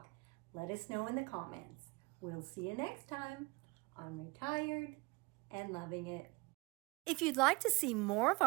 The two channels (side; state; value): left; quieter; 25.5 dB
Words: let us know in the comments. We'll see you next time on Retired and Loving It. If you'd like to see more of